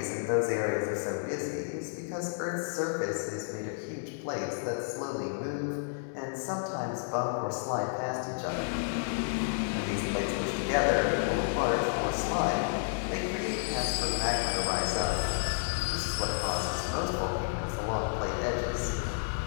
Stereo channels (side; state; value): right; silent; digital silence